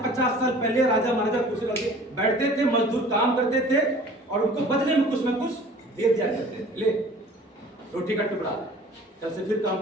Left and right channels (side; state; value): both; normal; correlation 0.47